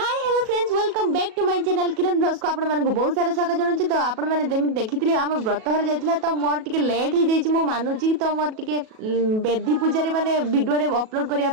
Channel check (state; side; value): late; left; 37 ms